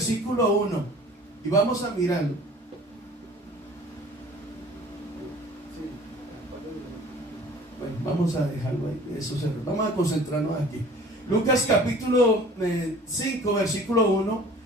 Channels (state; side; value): normal; both; correlation 0.48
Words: 1 y vamos a mirarlo. Bueno, vamos a dejarlo ahí. Vamos a concentrarnos aquí. Lucas capítulo 5 versículo 1,